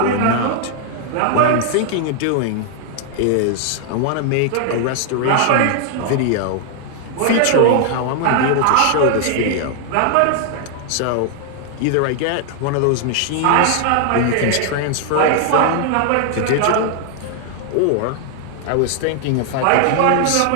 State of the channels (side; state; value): both; different; correlation 0.00